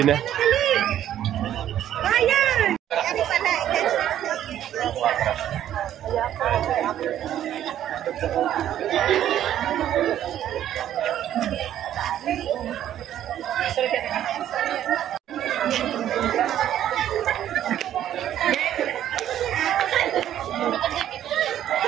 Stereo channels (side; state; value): left; quieter; 11.3 dB